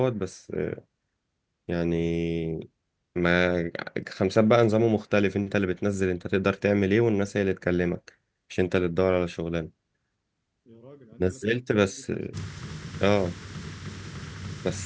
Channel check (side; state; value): both; identical; correlation 1.00